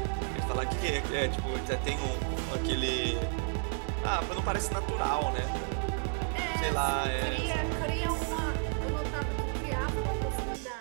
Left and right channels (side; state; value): left; quieter; 39.6 dB